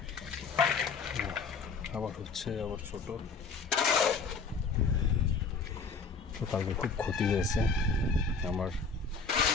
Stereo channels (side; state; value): right; quieter; 4.8 dB